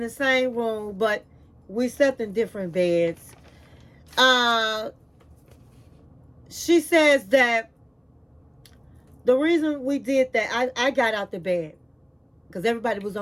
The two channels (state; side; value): identical; both; correlation 1.00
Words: the same room, but we slept in different beds. She says that the reason we did that, I got out the bed because everybody was